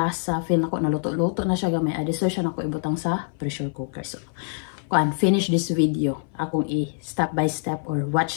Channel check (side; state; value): right; silent; 59 dB below the other